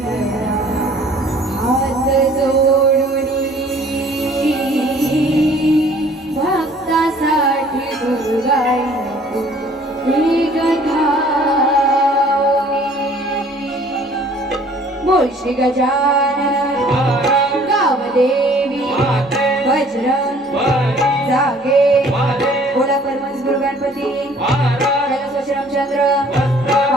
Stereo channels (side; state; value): both; normal; correlation 0.55